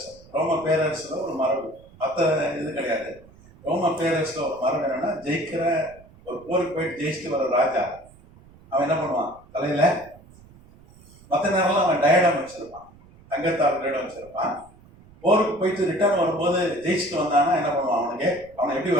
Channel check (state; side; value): noise; right; rumble, 25 dB below the sound